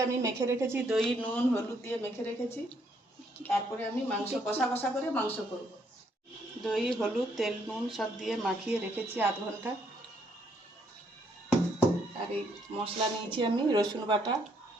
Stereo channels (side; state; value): both; normal; correlation 0.71